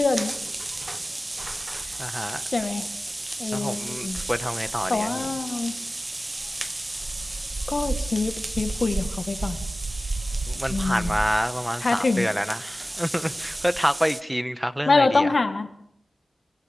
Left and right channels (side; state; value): both; normal; correlation 0.97